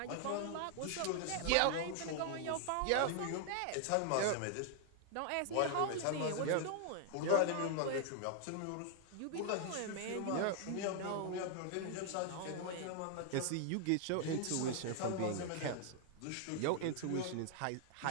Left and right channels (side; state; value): both; different; correlation 0.00